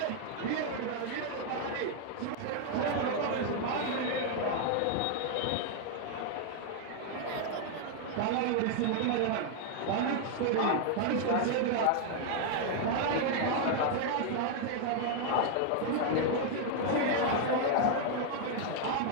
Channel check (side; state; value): both; different; correlation 0.00